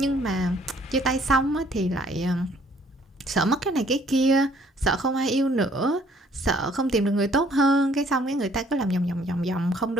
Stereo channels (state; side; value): normal; both; correlation 0.61